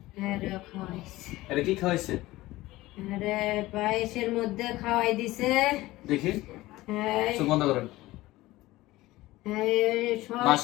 এটা কি খাওয়াইছে? আরে পায়েসের মধ্যে খাওয়াই দিছে। দেখি, চোখ বন্ধ করেন। সব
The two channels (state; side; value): quieter; right; 18.1 dB